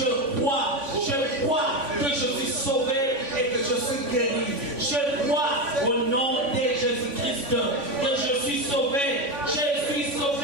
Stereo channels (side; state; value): left; late; 3.5 ms